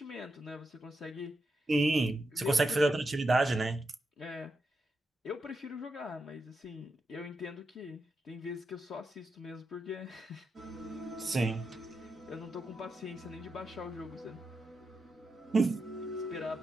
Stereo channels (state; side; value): normal; both; correlation 0.86